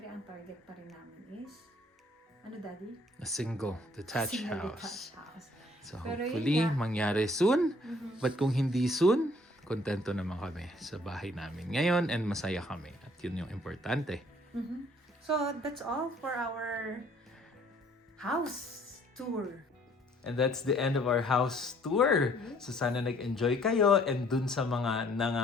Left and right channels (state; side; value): normal; both; correlation 0.60